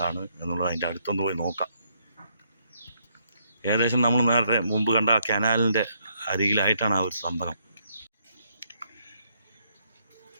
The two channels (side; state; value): both; inverted; correlation -0.73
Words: എന്നുള്ളത് അതിൻ്റെ അടുത്തൊന്ന് പോയി നോക്കാം. ഏകദേശം നമ്മൾ നേരത്തെ മുമ്പ് കണ്ട ആ കനാലിൻ്റെ അരികിലായിട്ടാണ് ആ ഒരു സംഭവം.